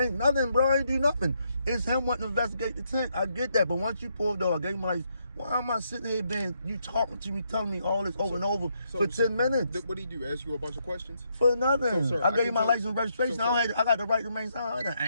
nothing, bro. I ain't do nothing. It's him wanting to investigate the tent. I get that. But once you pulled though, I gave him like, why am I sitting here you talking to me, telling me all this over and over for 10 minutes? What did he do? Ask you a bunch of questions? For nothing. So, sir, I gave you can my tell- license and registration. so, sir- I got the right to remain silent. I didn't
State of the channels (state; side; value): inverted; both; correlation -0.77